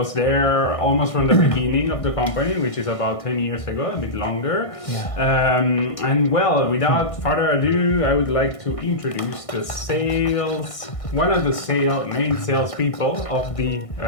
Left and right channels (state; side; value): late; right; 1.6 ms